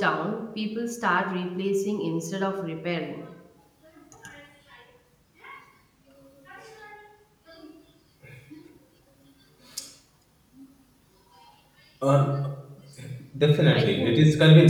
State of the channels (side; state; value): both; identical; correlation 1.00